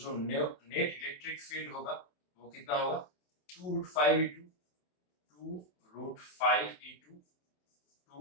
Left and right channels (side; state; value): right; late; 27 ms